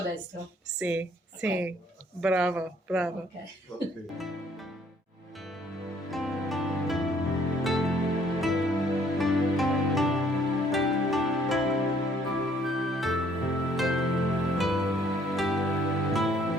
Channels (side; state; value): both; normal; correlation 0.63